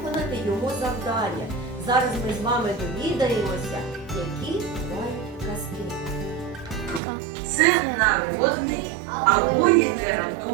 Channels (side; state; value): left; drops out; at 7.0 s